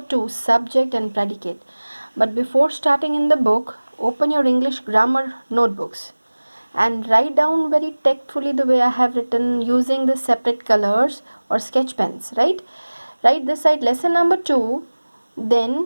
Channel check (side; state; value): both; inverted; correlation -1.00